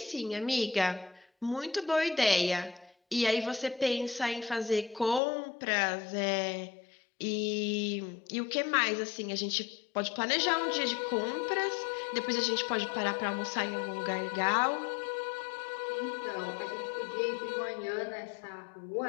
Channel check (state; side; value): drops out; right; at 5.2 s